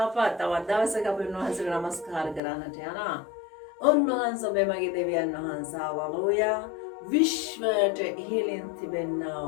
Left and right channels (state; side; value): drops out; right; at 2.4 s